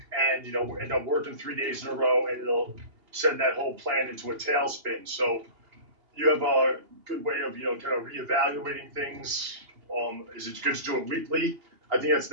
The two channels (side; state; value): left; late; 2.8 ms